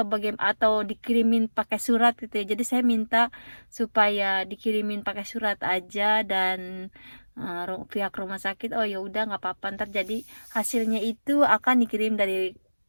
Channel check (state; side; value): inverted; both; correlation -1.00